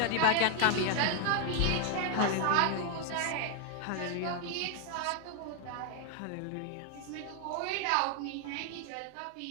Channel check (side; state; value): both; different; correlation 0.01